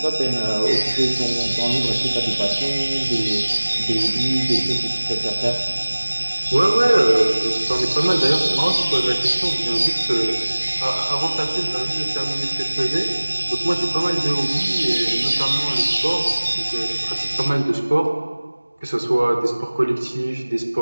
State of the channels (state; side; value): inverted; both; correlation -1.00